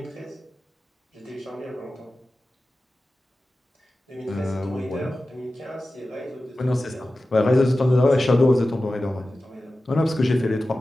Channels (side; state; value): both; normal; correlation 0.94